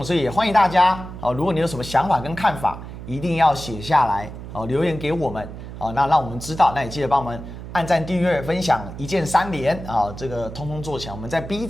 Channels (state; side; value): noise; right; hum, 11 dB below the sound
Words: 所以也欢迎大家哦，如果你有什么想法跟看法，一定要写下来哦，留言给我们哦，那让我们知道，那也记得帮我们按赞、订阅、分享，一键3连啊，这个通通做起来。我们在 B